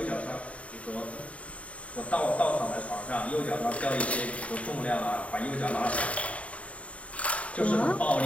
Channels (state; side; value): late; right; 0.065 ms